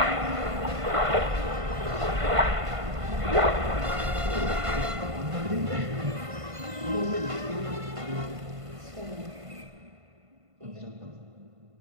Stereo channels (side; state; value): left; late; 1.5 ms